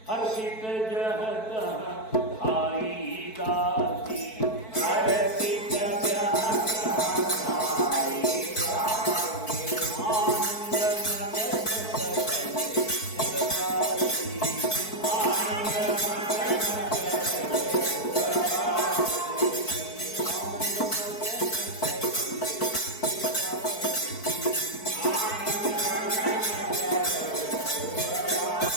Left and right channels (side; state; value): right; late; 4.6 ms